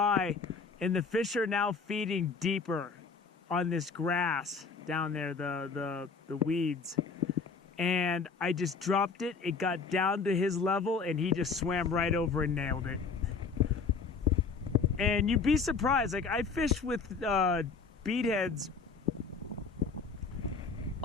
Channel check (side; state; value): right; quieter; 4.9 dB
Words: And the fish are now feeding deeper on this grass down there, the weeds. And I just dropped it. It got down to his level, and he just swam right over and nailed it. And you'd be surprised. Like, I fish with bead heads